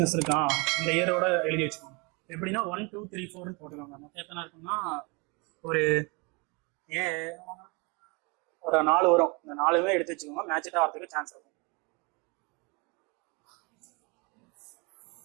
இருக்கான், இந்த இயரோட எழுதி வச்சுக்கோங்க. எப்படின்னா 1 2 3 4 போட்டுக்கோங்க. மொத்தம் எத்தனை இருக்குன்னா ஒரு 4 வரும். இந்த 4மே எடுத்து வச்சுக்கோங்க, மேட்சிட்டா வரதுக்கு சான்ஸ் இருக்கும்.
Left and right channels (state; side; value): quieter; left; 29.6 dB